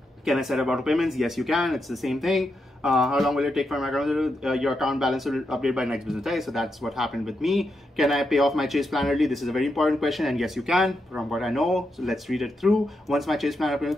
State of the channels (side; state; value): both; normal; correlation 0.84